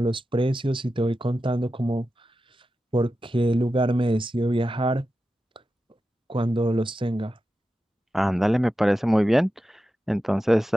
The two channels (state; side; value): normal; both; correlation 0.91